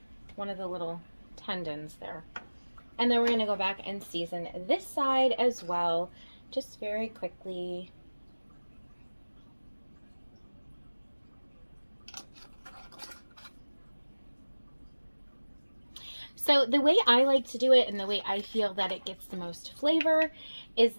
one of the little tendons there. And then we're going to go back and season this side as well, just very quickly. So the way I like to do it, and the way I feel that it gets the most flavor, is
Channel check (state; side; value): inverted; both; correlation -1.00